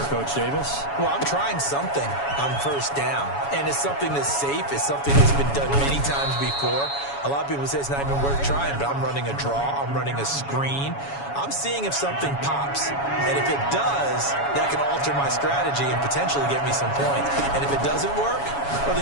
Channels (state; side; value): late; right; 7.1 ms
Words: Coach Davis? Well, I'm trying something on 1st down, and it's something that's safe. It's something that's been done many times before. A lot of people say it's not even worth trying, but I'm running a draw. I'm running a screen. I'm seeing if something pops. And if it does, that can alter my strategy and potentially get me some points. And if it doesn't work, well,